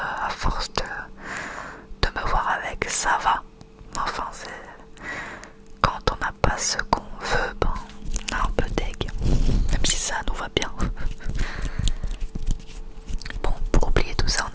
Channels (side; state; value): both; identical; correlation 1.00